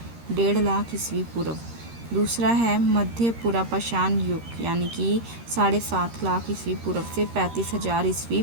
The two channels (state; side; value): late; left; 13 ms